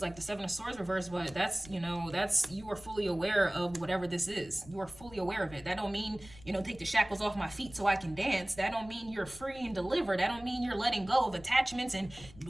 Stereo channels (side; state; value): left; noise; rumble, 20 dB below the sound